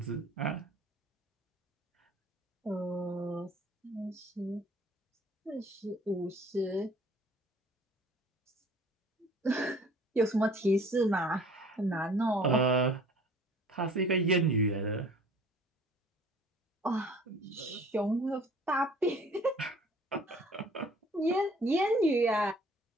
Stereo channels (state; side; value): normal; both; correlation 0.52